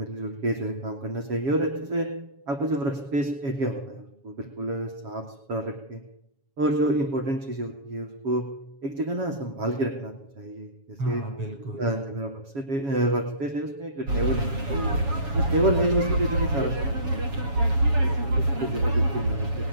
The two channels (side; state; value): left; late; 7.2 ms